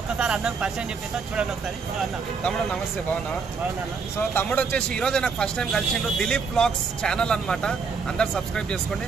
అన్నకు పరిచయం చెప్పేస్తా, చూడండి ఒకసారి. అన్న తమ్ముడు నమస్తే, బాగున్నా? సో తమ్ముడు వచ్చేసి ఈరోజు నాకు ఫస్ట్ టైం కలిసిండు. దిలీప్ బ్లాగ్స్ ఛానల్ అనమాట, అందరు సబ్స్క్రైబ్ చేసుకోండి.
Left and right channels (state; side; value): quieter; left; 5.2 dB